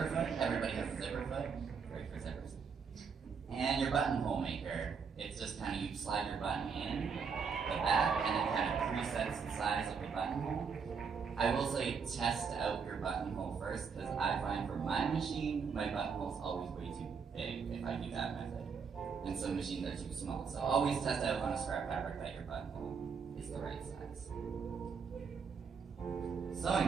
foot, everybody has a zipper foot, great for zippers. And your buttonhole maker, it's just kind of, you slide your button in the back, and it kind of presets the size of your buttonhole. I will say test out your buttonhole first, because I find for my machine, my buttonhole's always way too big if I do that method. And some machines are too small. So always test out on a scrap fabric that your buttonhole is the right size.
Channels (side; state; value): left; quieter; 5.9 dB